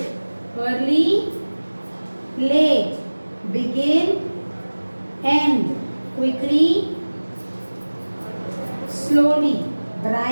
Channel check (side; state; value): both; inverted; correlation -1.00